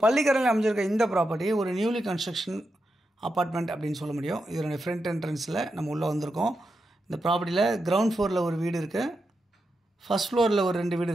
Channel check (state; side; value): normal; both; correlation 0.87